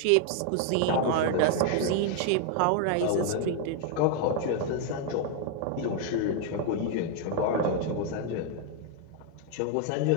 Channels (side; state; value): both; different; correlation 0.00